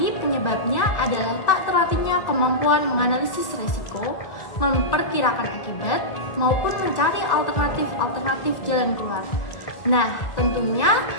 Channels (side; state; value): right; late; 2.0 ms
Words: penyebabnya adalah tak terlatihnya kemampuan menganalisis resiko, memperkirakan akibat, maupun mencari alternatif jalan keluar. Nah, tentunya